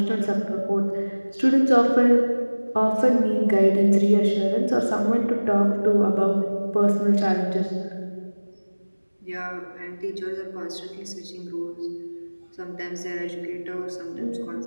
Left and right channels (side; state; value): both; inverted; correlation -1.00